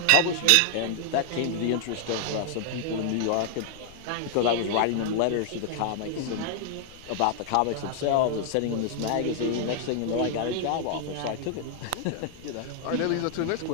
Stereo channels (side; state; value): both; different; correlation 0.00